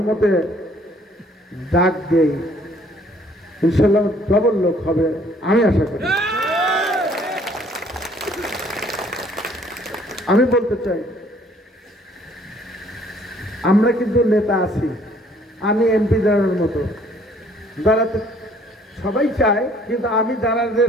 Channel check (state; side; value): normal; both; correlation 0.60